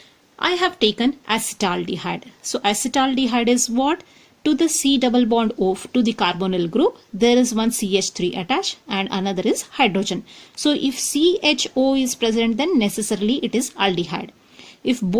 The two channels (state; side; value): identical; both; correlation 1.00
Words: I have taken acetaldehyde. So acetaldehyde is what? To the C double bond O to the carbonyl group, there is one CH3 attached and another is hydrogen. So if CHO is present, then necessarily it is aldehyde. If